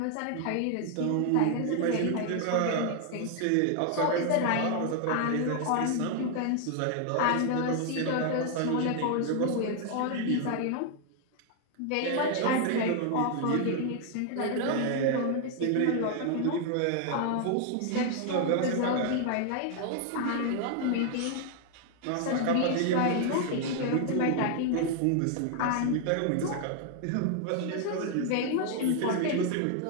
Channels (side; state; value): both; different; correlation 0.00